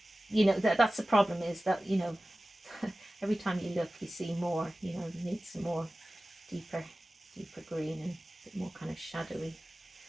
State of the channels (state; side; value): normal; both; correlation 0.96